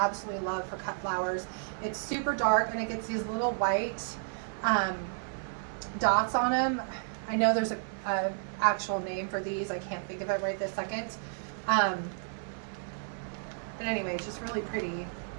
love for cut flowers. It's super dark, and it gets these little white dots on them. I know there's a actual name for these. I can't think of it right this second. But anyway, it's just really pretty.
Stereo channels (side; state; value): left; silent; digital silence